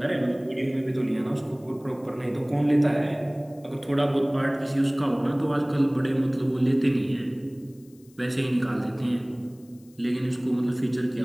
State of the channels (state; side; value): noise; left; hiss, 30 dB below the sound